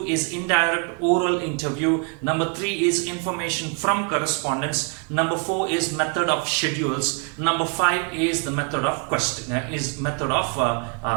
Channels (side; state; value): left; quieter; 37.5 dB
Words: is indirect oral interview. Number 3 is information from correspondence. Number 4 is method of schedules. Number 5 is the method of